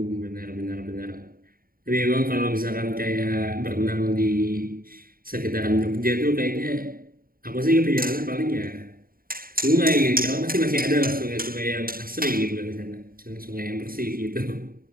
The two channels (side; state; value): left; late; 0.42 ms